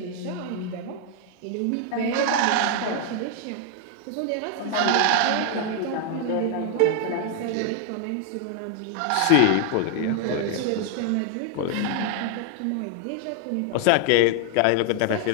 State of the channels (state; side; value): different; both; correlation 0.00